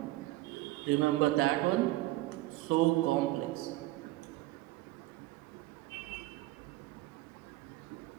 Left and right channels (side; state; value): left; quieter; 18.1 dB